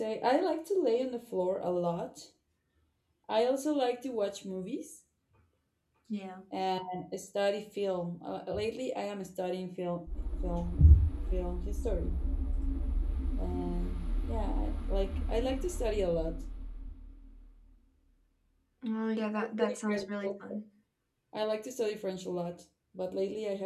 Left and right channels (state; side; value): identical; both; correlation 1.00